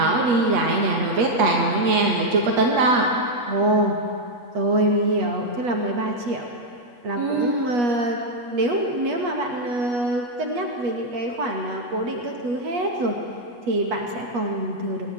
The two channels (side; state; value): left; late; 8.2 ms